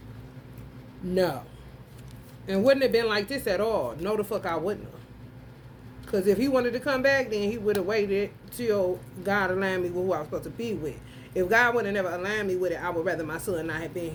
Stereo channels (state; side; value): identical; both; correlation 1.00